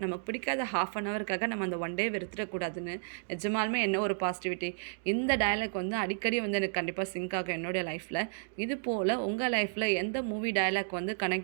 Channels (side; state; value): left; silent; digital silence